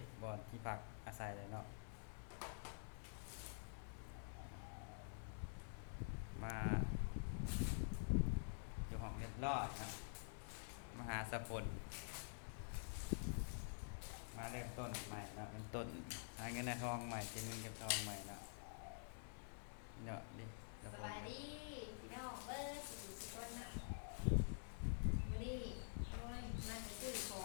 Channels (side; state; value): right; silent; digital silence